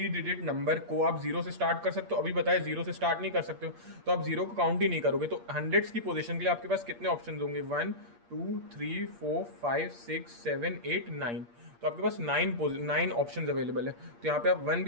डिजिट नंबर को आप 0 से स्टार्ट कर सकते हो, अभी बताया 0 से स्टार्ट नहीं कर सकते हो, तो आप 0 को काउंट ही नहीं करोगे, तो हंड्रेड्स की पोजीशन के लिए आपके पास कितने ऑप्शन होंगे, 1 2 3 4 5 6 7 8 9, तो आपके पास 9 ऑप्शन अवेलेबल है, तो यहाँ पे आप 1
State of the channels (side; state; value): left; late; 8.5 ms